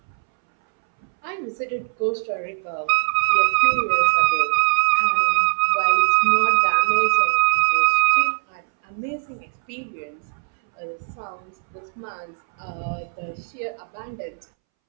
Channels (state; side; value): silent; left; 64 dB below the other